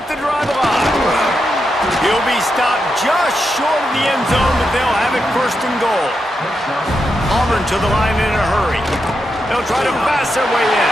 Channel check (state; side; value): normal; both; correlation 0.85